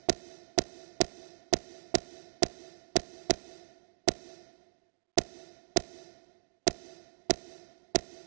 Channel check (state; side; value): silent; left; digital silence